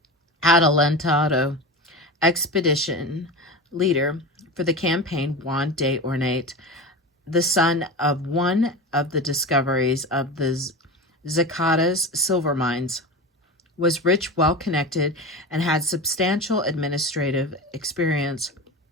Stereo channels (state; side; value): normal; both; correlation 0.26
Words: adelantado expedition leader for the campaign. Juan de Ornate, the son of one of the discoveries of the Zacatecas silver mines, was rich, well-connected, and had substantial administrative experience.